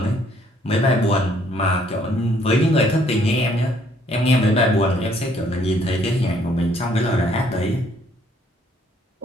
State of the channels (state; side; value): normal; both; correlation 0.65